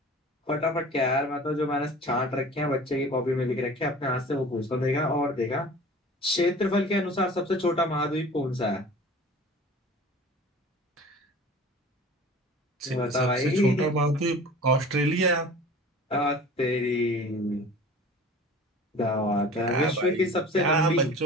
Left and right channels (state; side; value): normal; both; correlation 0.42